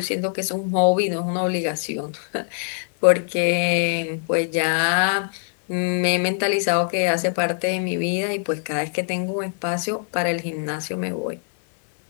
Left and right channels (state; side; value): silent; right; 59 dB below the other